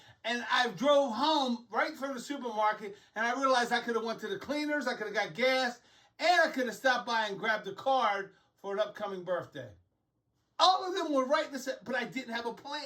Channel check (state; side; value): identical; both; correlation 1.00